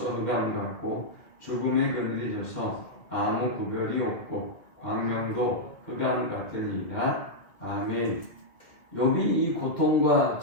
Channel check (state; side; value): late; right; 2.0 ms